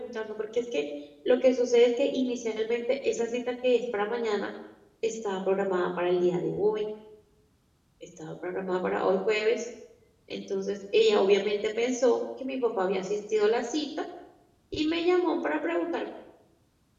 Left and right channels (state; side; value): identical; both; correlation 1.00